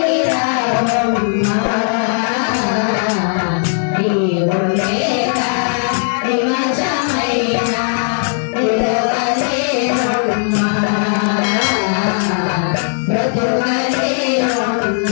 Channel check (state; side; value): silent; right; 62 dB below the other